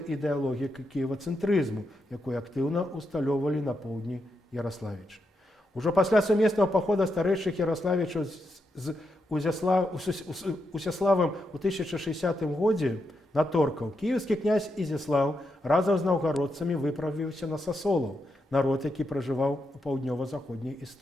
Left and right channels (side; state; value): both; normal; correlation 0.84